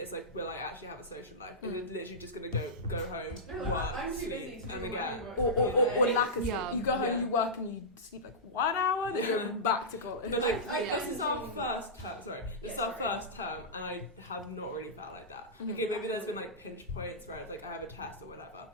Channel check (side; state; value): both; normal; correlation -0.14